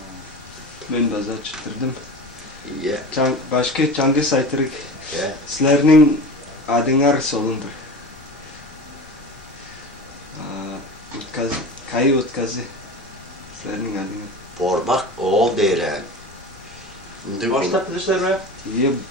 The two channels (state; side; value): noise; left; rumble, 23 dB below the sound